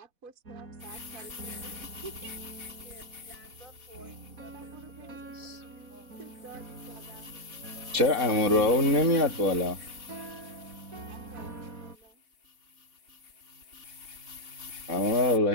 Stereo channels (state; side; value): late; left; 4.1 ms